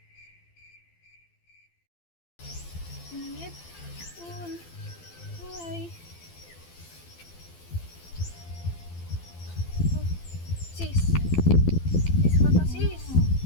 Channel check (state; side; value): late; right; 12 ms